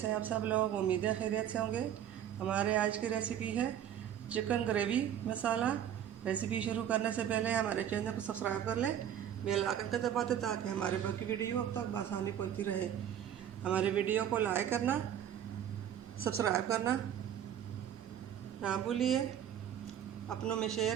हैं आप सब लोग। उम्मीद है खैरियत से होंगे। हमारे आज की रेसिपी है चिकन ग्रेवी मसाला। रेसिपी शुरू करने से पहले हमारे चैनल को सब्सक्राइब कर लें, बेल आइकन को दबा दें ताकि हमारे बाकी वीडियो अब तक आसानी पहुंचती रहे। हमारे वीडियो को लाइक करना, सब्सक्राइब करना ना भूलिए, अपनों में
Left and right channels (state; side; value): quieter; left; 10.0 dB